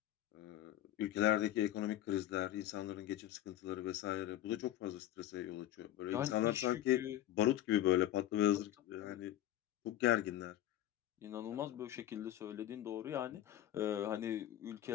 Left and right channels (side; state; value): right; quieter; 12.9 dB